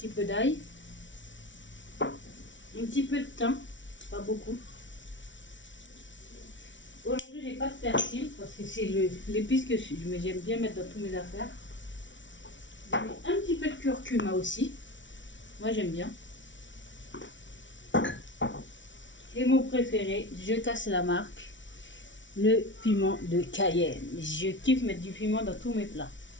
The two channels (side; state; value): right; late; 0.55 ms